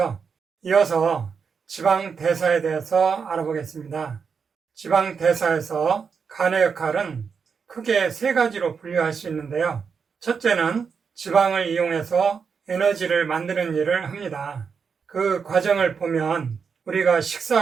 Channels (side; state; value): left; quieter; 6.0 dB